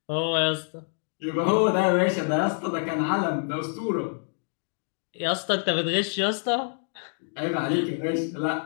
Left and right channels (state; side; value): silent; right; 60 dB below the other